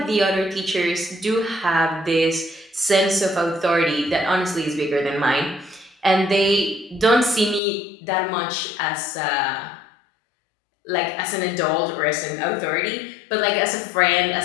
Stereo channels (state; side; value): drops out; right; at 7.6 s